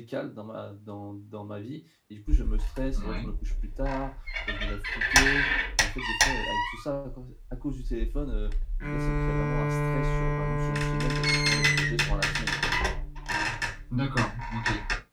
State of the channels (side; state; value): both; identical; correlation 1.00